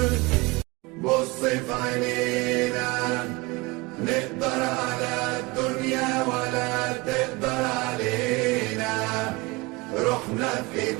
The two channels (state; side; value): quieter; left; 24.2 dB